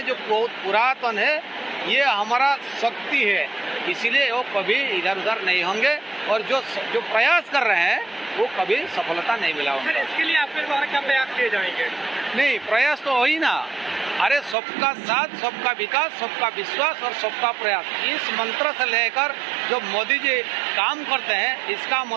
जो बहुत पुरातन है, ये हमारा शक्ति है, इसीलिए वो कभी इधर उधर नहीं होंगे और जो प्रयास कर रहे हैं वो कभी सफलता नहीं मिला उनको। इसके लिए आपके द्वारा क्या प्रयास किए जाएंगे? नहीं, प्रयास तो हो ही ना। अरे सबका साथ, सबका विकास, सबका विश्वास और सबका प्रयास, इस मंत्र से लेकर जो मोदी जी काम करते हैं, इसका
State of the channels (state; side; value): drops out; left; at 14.6 s